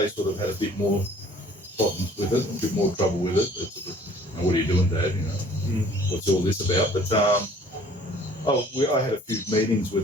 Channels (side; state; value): both; normal; correlation 0.54